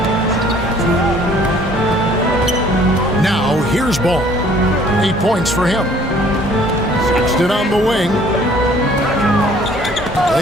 Now here's Ball. 8 points for him. Sexton on the wing.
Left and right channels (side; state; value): both; normal; correlation 0.57